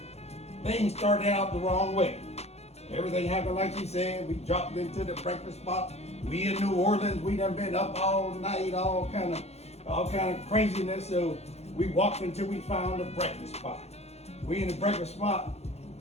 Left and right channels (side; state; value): right; late; 0.31 ms